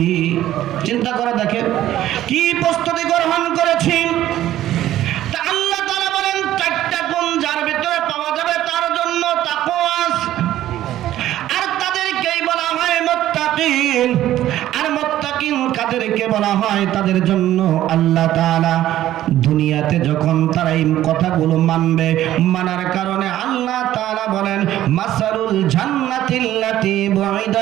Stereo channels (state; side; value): quieter; left; 13.3 dB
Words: চিন্তা করে দেখেন, কি প্রস্তুতি গ্রহণ করেছি। তা আল্লাহ তাআলা বলেন 4টা গুণ যার ভিতরে পাওয়া যাবে তার জন্য তাকওয়া, আর তাদেরকেই বলা হয় মুত্তাকিন। আর মুত্তাকিন কাদেরকে বলা হয়? তাদের জন্য আল্লাহ তাআলা দুনিয়াতে যখন তারা এই কথাগুলো মানবে, মানার কারণে আল্লাহ তাআলা বলেন মাসালুল জান্নাতিল্লাতী